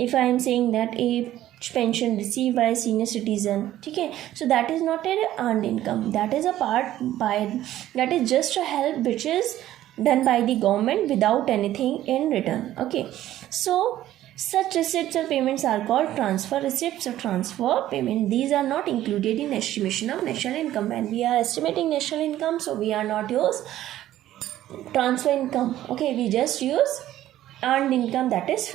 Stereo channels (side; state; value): left; quieter; 13.5 dB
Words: I am saying that a pension received by a senior citizen, okay, so that is not an earned income, that is a part by, that is just a help which is done by the government without anything in return. Okay, so such receipts or payments are called transfer receipts or transfer payment. These are not included in estimation of national income. When we are estimating national income, so we are not use transfer income. Okay, we just use earned income, that is